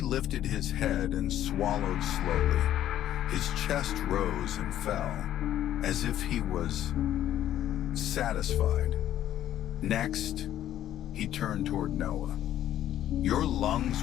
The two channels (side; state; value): right; quieter; 11.9 dB